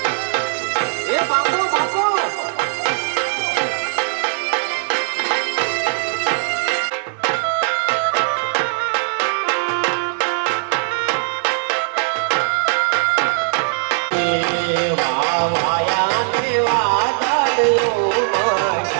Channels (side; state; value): left; silent; digital silence